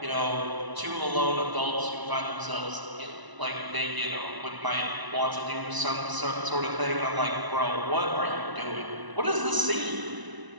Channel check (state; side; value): late; left; 1.0 ms